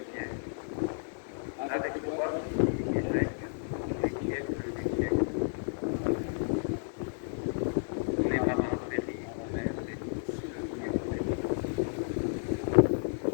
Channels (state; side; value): silent; right; digital silence